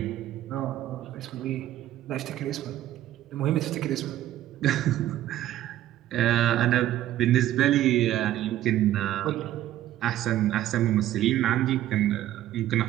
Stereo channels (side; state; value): left; quieter; 13.3 dB